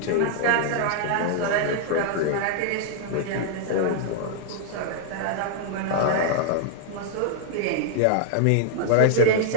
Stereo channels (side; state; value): both; different; correlation -0.01